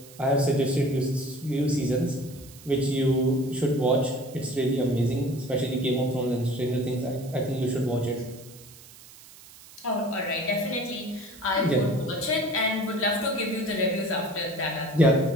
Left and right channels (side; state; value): right; noise; hiss, 20 dB below the sound